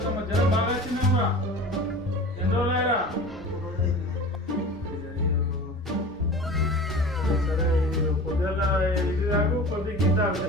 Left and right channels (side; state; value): both; normal; correlation 0.37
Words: తమ్మ జ్వరం బాగా వచ్చిందేమరా? ఎన్ని రోజులయ్యారా? సరే పొద్దుల ఇది తాగు, కొద్ది గీత తాగు.